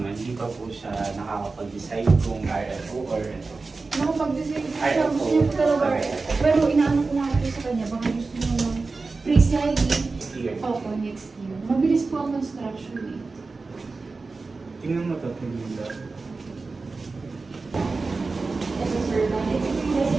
Hindi pa po siya nakakapag-decide kung RFO or ito? Nakapag-decide po siya. Gusto niya po talaga RFO. Pero inaano ko nga po sa kanya. Baka gusto niya ng pre-siding. Opo, next year. Mabilis po ang construction eh. Tingnan mo ito, tingnan mo.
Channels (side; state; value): left; quieter; 3.9 dB